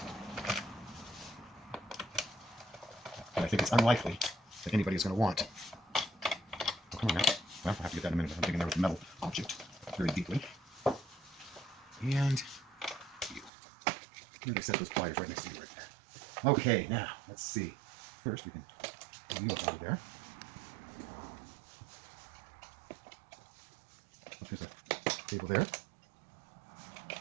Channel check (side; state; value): left; drops out; at 13.5 s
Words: But I think it's unlikely that anybody is going to want. Oh, come on now. Well, I'll have to get that in a minute. I'm digging there with a metal object very deeply. And you. I'm going to set those pliers right next to you right there. Okay, now, let's see. First, we can wheel it out of there. Oh, there's a cable there.